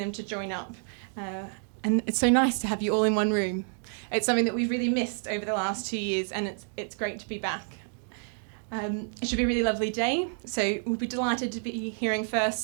to join up. And it's so nice to have you all in one room. It's something that we've really missed over the last 2 years, and it's great to be back. It should be a really lovely day, so we'll be delighted to be hearing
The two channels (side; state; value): left; silent; 59 dB below the other